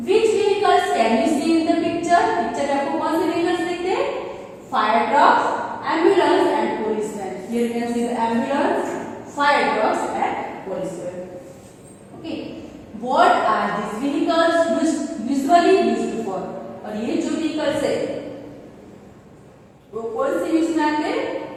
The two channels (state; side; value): identical; both; correlation 1.00